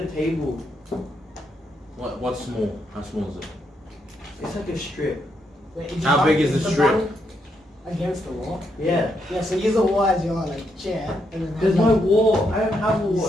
table. What's small? How small is it? It's like a strip. How big is the strip? Against the wall? Yeah. Yeah, so use the wall as your like chair. And then There's no wall. I don't have a wall.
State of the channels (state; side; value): normal; both; correlation 0.78